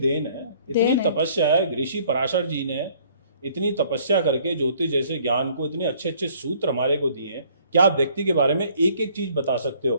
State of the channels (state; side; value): inverted; both; correlation -0.59